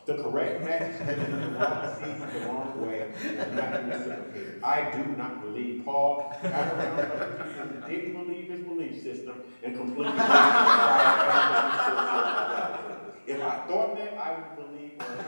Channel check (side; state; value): both; inverted; correlation -1.00